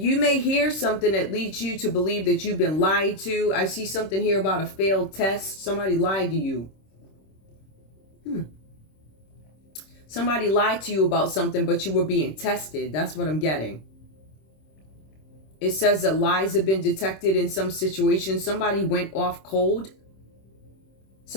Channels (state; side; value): late; right; 26 ms